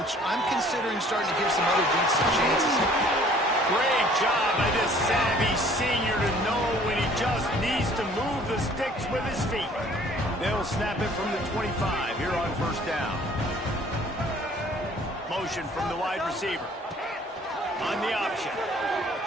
coach, I'm considering starting to give some other dudes some chances. Great job by this savvy senior to know when he just needs to move the sticks with his feet. They'll snap it from the 25 here on first down. Motion from the wide receiver. On the option.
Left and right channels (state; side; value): normal; both; correlation 0.55